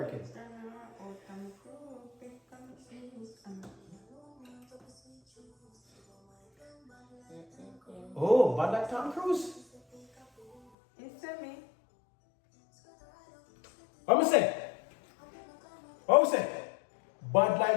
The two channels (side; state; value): right; drops out; at 10.6 s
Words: Oh, but like Tom Cruise. It's to me. What me say? What me say? Bad